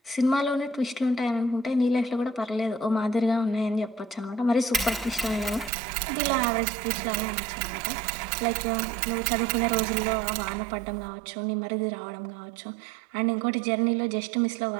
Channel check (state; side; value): drops out; left; at 5.7 s